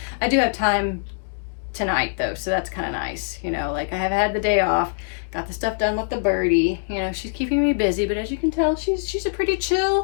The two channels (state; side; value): silent; right; digital silence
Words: I do have time tonight though, so that's kind of nice, you know, like I have had the day off, got the stuff done with the birdie, you know, she's keeping me busy, but as you can tell, she's a pretty